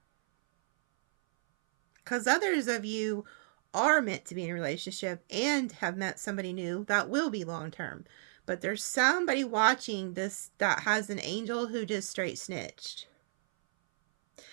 Because others of you are meant to be in a relationship and have met somebody new that will be long term. But there's somebody watching this that has an angel who just straight snitched.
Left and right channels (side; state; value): left; silent; 56 dB below the other